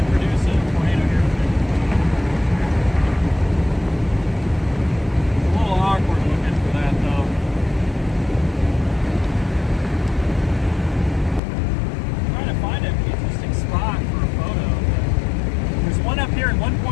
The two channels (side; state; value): right; drops out; at 11.4 s